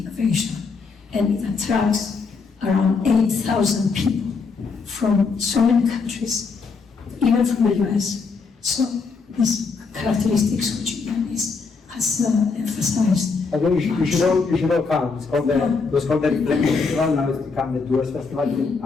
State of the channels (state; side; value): quieter; right; 4.8 dB